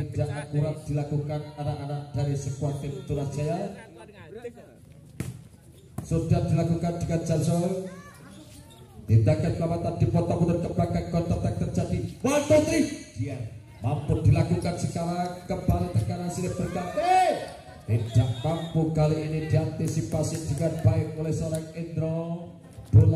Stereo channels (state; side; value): identical; both; correlation 1.00